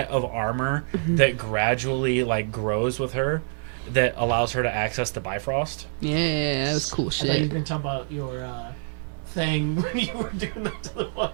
of armor that gradually like grows with her, that allows her to access the Bifrost. Yeah, that was cool I thought you were shit. going to talk about your thing when you were doing that to the one.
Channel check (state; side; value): silent; left; 58 dB below the other